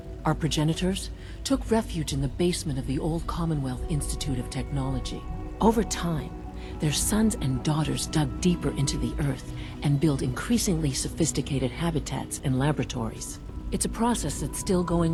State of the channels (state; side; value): identical; both; correlation 1.00